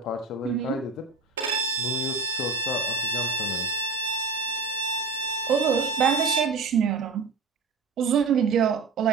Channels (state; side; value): quieter; left; 4.5 dB